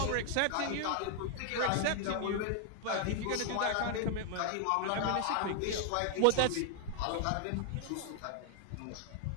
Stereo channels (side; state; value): both; different; correlation 0.00